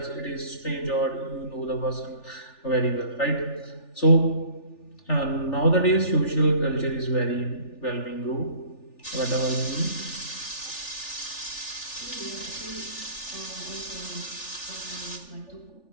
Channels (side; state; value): right; late; 3.4 ms